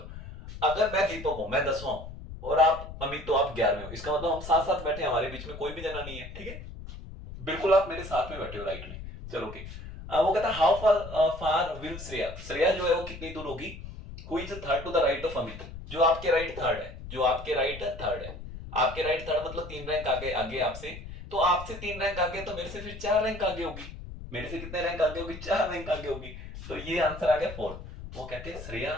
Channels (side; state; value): left; noise; rumble, 12 dB below the sound